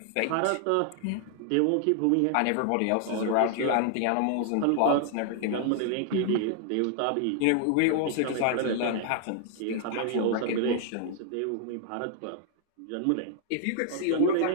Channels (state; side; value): different; both; correlation 0.00